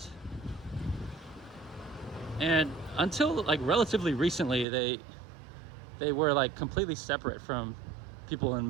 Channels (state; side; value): drops out; left; at 4.7 s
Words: And until like relatively recently, they were like completely separate from people in